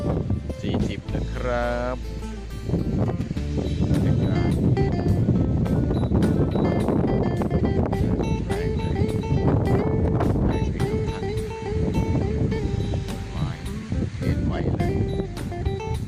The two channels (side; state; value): both; identical; correlation 1.00